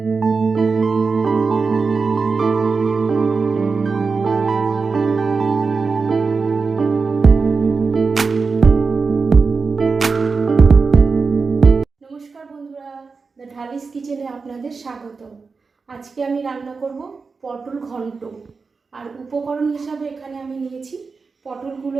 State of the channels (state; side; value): quieter; left; 4.6 dB